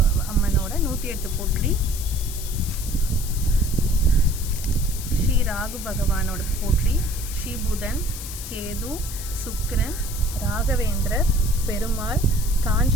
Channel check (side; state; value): left; noise; hiss, 10 dB below the sound